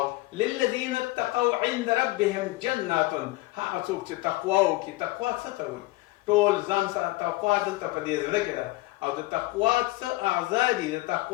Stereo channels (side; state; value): right; quieter; 20.1 dB